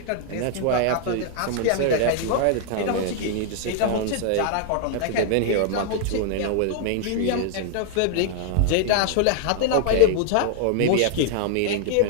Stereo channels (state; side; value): different; both; correlation 0.00